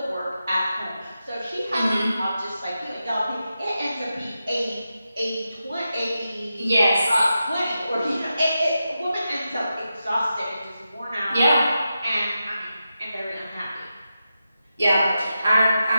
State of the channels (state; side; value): inverted; both; correlation -0.89